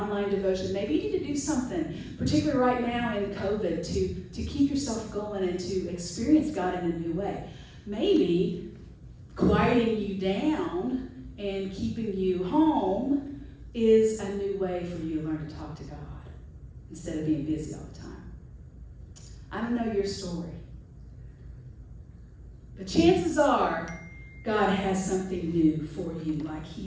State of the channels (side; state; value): both; identical; correlation 1.00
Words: devotion. Maybe you need to do something, particularly right now in COVID, to keep yourself going and to experience God in a new way. Maybe quieting you down and keeping you home is a new way for you to learn to talk to God instead of being busy all the time. I don't know your story, but chances are God has something new for you, like